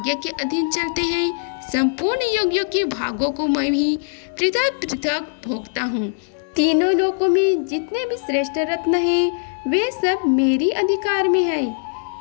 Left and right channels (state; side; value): silent; right; digital silence